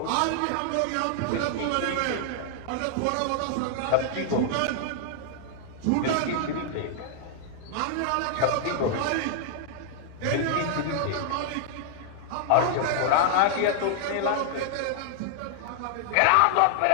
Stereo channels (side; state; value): both; different; correlation 0.00